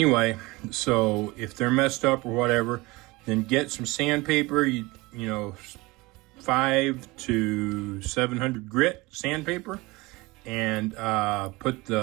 so if they're messed up or whatever, then get some sandpaper, you know, 500 to 700 grit sandpaper, and put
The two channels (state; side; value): quieter; left; 22.7 dB